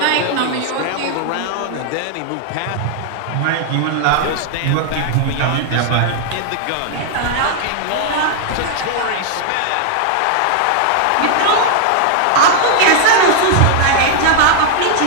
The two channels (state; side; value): different; both; correlation 0.00